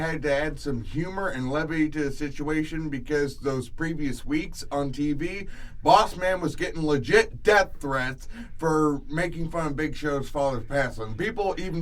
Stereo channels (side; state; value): both; identical; correlation 1.00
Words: to add some humor and levity to the situation, because those previous weeks on TV, Boss Man was getting legit death threats for making fun of Big Show's father's passing. People